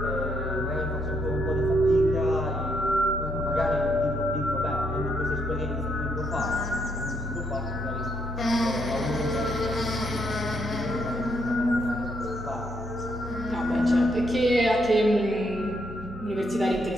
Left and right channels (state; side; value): normal; both; correlation 0.75